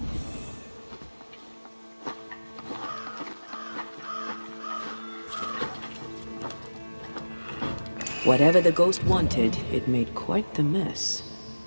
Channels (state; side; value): inverted; both; correlation -1.00